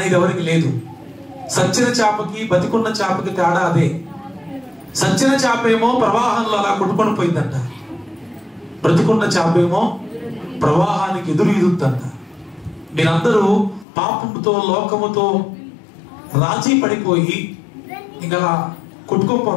ఎవరికి లేదు. సచ్చిన చేపకి బతికున్న చేపకి తేడా అదే. సచ్చిన చేపేమో ప్రవాహంలో అలా కొట్టుకొని పోయిందంట, బ్రతికున్న చేపేమో ప్రవాహానికి ఎదురీదుద్దంట. మీరందరూ పాపముతో లోకముతో రాజీ పడిపోయి ఇంకా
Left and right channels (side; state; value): right; drops out; at 13.9 s